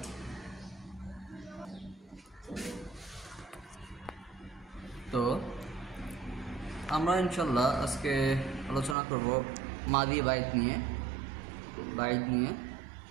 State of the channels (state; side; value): drops out; left; at 9.0 s